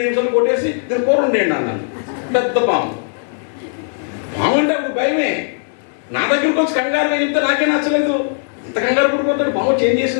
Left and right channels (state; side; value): silent; right; digital silence